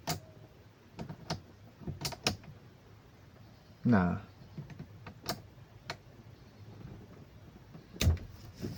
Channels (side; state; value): both; identical; correlation 1.00